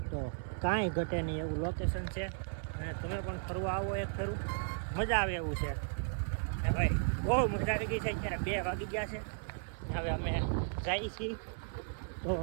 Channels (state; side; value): silent; left; digital silence